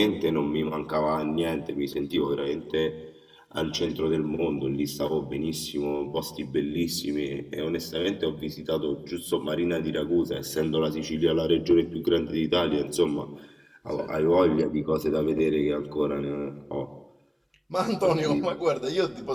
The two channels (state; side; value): identical; both; correlation 1.00